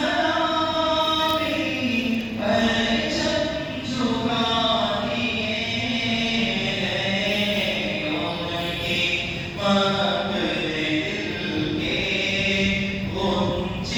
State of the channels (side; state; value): both; identical; correlation 1.00